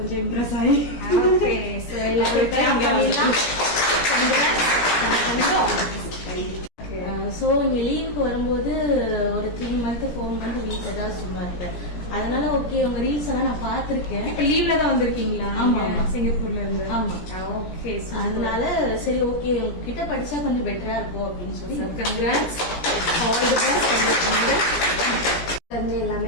இம்ப்ரெஸ் ஆகி சோ இங்க லீவுக்கு வரும்போது ஒரு 3 month 4 month வீட்டுல தான் சும்மா இருப்பேன். அதனால ஓகே உங்க ரீல்ஸ் எல்லாம் நான் பாத்திருக்கேன். இப்ப லீவ்ல தான் வந்திருக்கீங்களா? சிங்கப்பூர்ல இருந்து. ஆமா. ஓகே. அதனால சரி ஓகே உங்ககிட்ட படிச்சா கொஞ்சம் பெட்டரா இருக்கும் அப்படின்னு சொல்லி கங்க்ராட்ஸ், ஆல் தி பெஸ்ட். வந்து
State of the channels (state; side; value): late; right; 17 ms